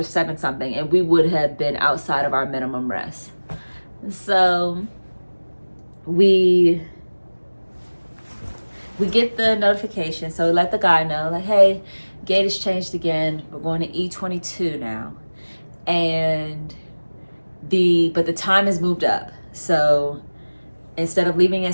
7 something, and we would have been outside of our minimum rest. So we get the notification. So we let the guy know, like, hey, gate has changed again. We're going to E22 now. And but the time has moved up. So instead of leaving at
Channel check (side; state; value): both; inverted; correlation -1.00